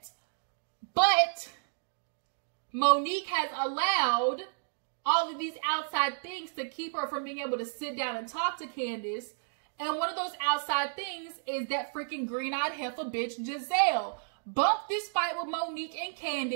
But Monique has allowed all of these outside things to keep her from being able to sit down and talk to Candiace. And one of those outside things is that freaking green-eyed heifer bitch, Gizelle. Bump this fight with Monique and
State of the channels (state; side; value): silent; left; digital silence